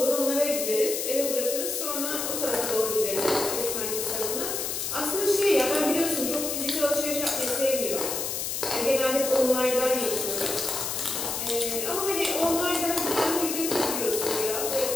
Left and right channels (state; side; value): noise; left; hiss, 2 dB below the sound